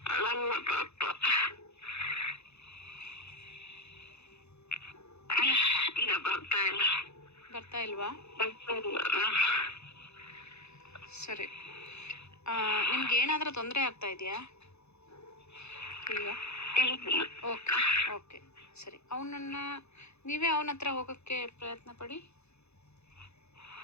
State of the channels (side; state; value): right; late; 0.81 ms